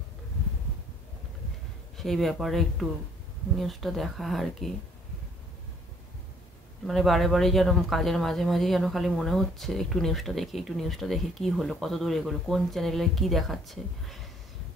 সেই ব্যাপারে একটু নিউজটা দেখা আর কি। মানে বারে বারে যেন কাজের মাঝে মাঝে যেন খালি মনে হচ্ছে একটু নিউজটা দেখি কি হলো, কত দূর এগোলো, কোন চ্যানেলে কি দেখাচ্ছে।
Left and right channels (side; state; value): both; normal; correlation 0.62